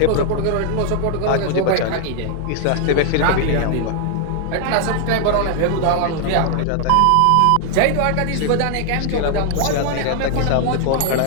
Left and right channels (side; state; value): both; different; correlation 0.00